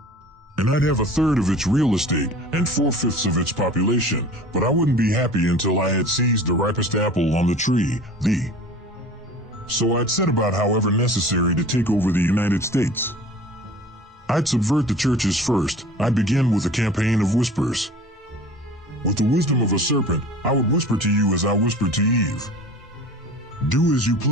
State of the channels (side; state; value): both; normal; correlation 0.43